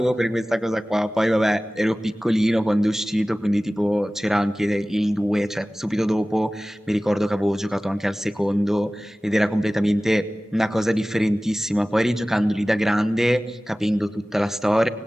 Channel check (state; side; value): normal; both; correlation 0.97